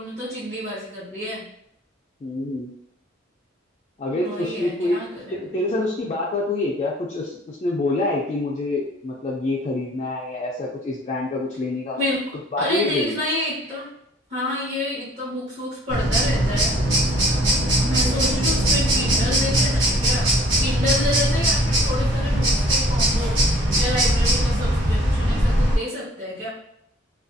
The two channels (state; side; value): normal; both; correlation 0.55